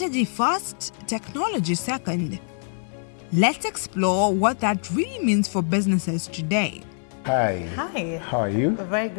first, technology second. Let's explore what that really means for businesses today. Hi. Hi. How are you? Very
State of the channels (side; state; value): right; silent; 62 dB below the other